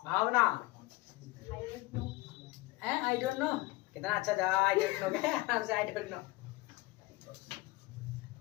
भावना है आई डोंट नो, कितना अच्छा जवाब, आई डोंट नो क्या, आराम से I don't know.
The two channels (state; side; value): quieter; right; 21.4 dB